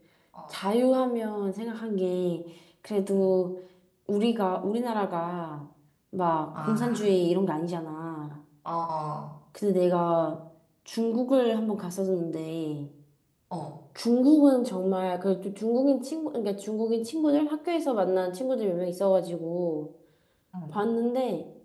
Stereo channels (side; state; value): both; identical; correlation 1.00